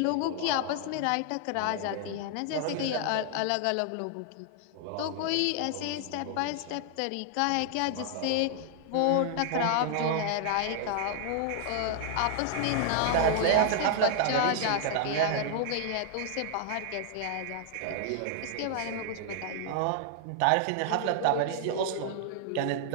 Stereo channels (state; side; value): different; both; correlation 0.00